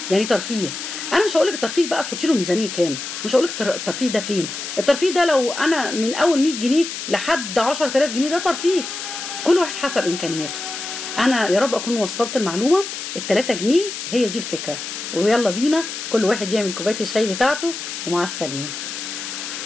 يعني ترفيه. انا مش هقول لك الترفيه بقى تحطي له ميزانيه كام، مش هقول لك الترفيه ده فين. الترفيه ده لو انا من اول 100 جنيه لحد 10000 جنيه ده ترفيه، كل واحد حسب امكانياته. انا يا رب اكون وصلت المعلومه. ال3 جنيه هي دي الفكره، ويلا بينا كل واحد يعمل كوبايه الشاي بتاعته، ومع السلامه.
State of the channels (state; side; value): noise; left; hiss, 7 dB below the sound